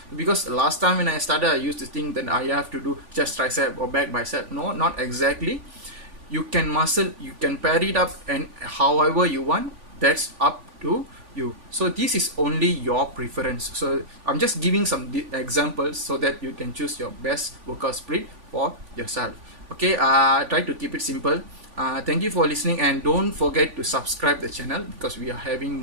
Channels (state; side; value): late; left; 3.5 ms